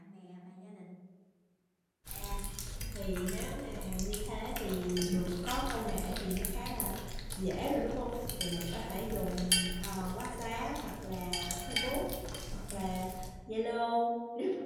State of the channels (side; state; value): both; identical; correlation 1.00